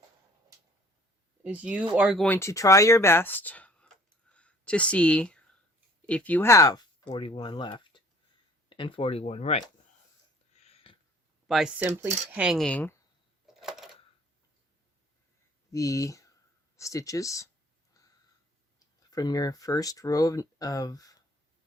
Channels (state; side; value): normal; both; correlation 0.53